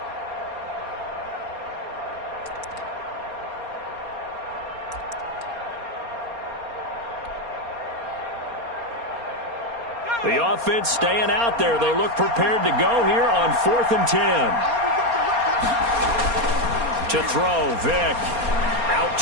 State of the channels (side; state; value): left; late; 4.3 ms